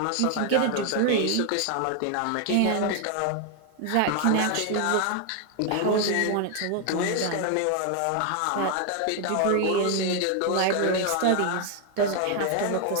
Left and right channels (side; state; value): both; different; correlation 0.01